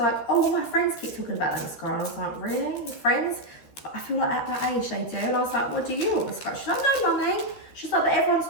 oh, all my friends keep talking about that mascara. And I was like, really? Your friends? But I feel like at that age they do. And I was like, what do you want mascara? She's like, no, mummy. She's like, but everyone's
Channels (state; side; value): late; right; 13 ms